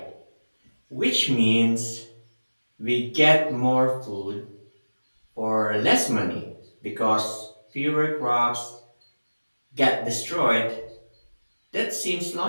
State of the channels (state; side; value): inverted; both; correlation -1.00